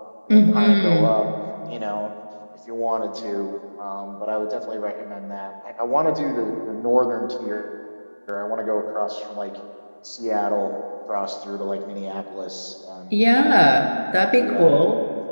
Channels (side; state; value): both; inverted; correlation -1.00